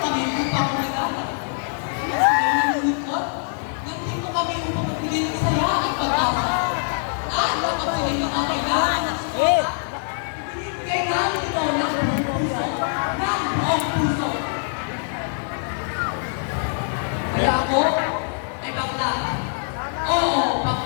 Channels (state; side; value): silent; right; digital silence